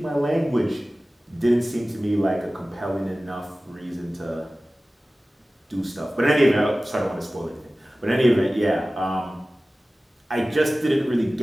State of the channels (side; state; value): both; normal; correlation 0.97